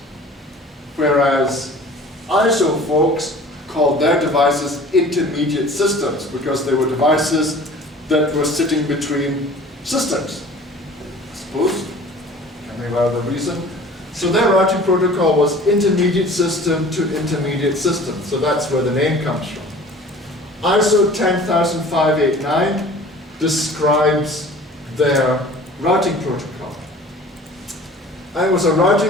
Whereas ISO folks called their devices intermediate systems because they were devices that were sitting between systems, I suppose, coming out of the reason. So their routing protocol was intermediate system to intermediate system. So that's where the name comes from. ISO 10589 describes their routing protocol. And it was a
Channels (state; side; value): normal; both; correlation 0.45